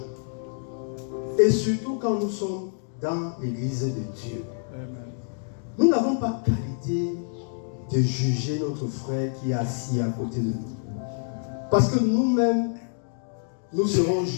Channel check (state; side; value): silent; right; 59 dB below the other